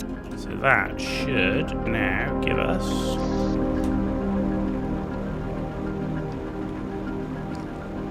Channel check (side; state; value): both; identical; correlation 1.00